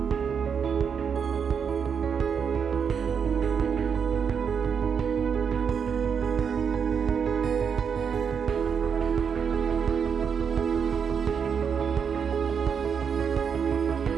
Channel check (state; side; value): quieter; left; 6.9 dB